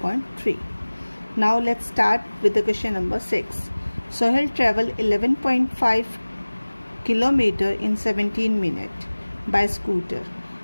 Now let's start with the question number 6. Sohail traveled 11.5 kilometer in 17 minutes by scooter.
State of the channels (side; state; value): both; inverted; correlation -1.00